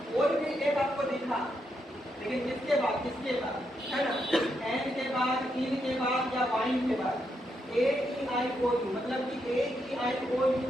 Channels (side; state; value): both; normal; correlation 0.81